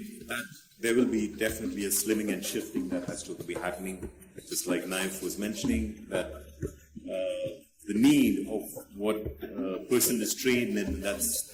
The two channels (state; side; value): identical; both; correlation 1.00